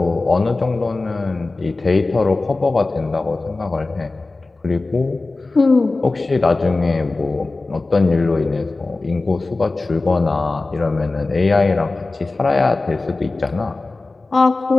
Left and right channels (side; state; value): right; quieter; 3.4 dB